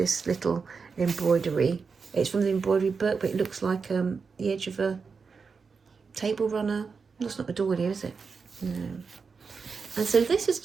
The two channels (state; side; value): quieter; left; 5.2 dB